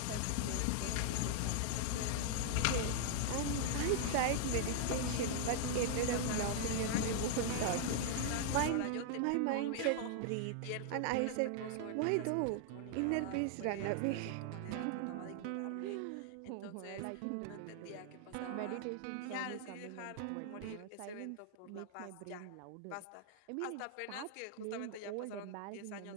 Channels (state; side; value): different; both; correlation 0.00